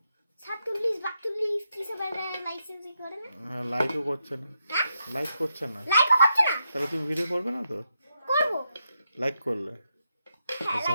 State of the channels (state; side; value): inverted; both; correlation -0.84